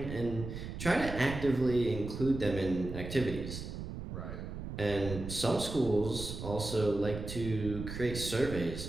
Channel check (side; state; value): right; noise; rumble, 8 dB below the sound